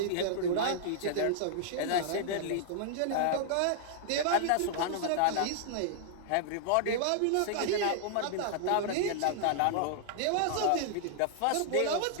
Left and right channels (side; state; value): both; different; correlation -0.01